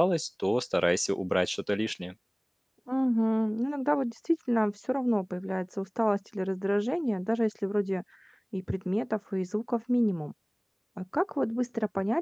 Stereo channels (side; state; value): both; identical; correlation 1.00